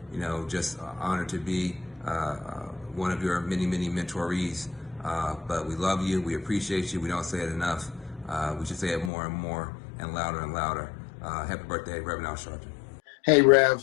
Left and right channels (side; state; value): right; drops out; at 9.1 s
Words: Just honored to be one of your many, many mentorees. But we love you, we appreciate you, we don't say it enough. We should say it more and more and louder and louder. Happy birthday, Reverend Al Sharpton. Hey,